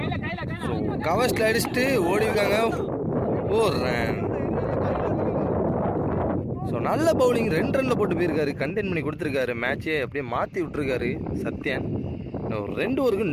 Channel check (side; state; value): both; identical; correlation 1.00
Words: ஸோ கவர்ஸ்ல அடிச்சுட்டு ஓடிருக்காங்க. ஒரு ரன். ஸோ நல்ல பவுலிங் 2 ரன்ல போட்டு போயிருக்காரு. கண்டெயின் பண்ணி கொடுத்துருக்காரு. மேட்சே அப்படியே மாற்றி விட்டுருக்காரு சத்யன். 2 ஓவருக்கு